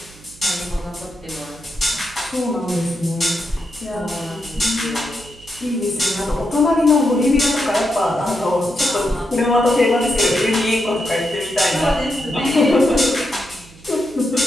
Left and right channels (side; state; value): right; noise; hum, 23 dB below the sound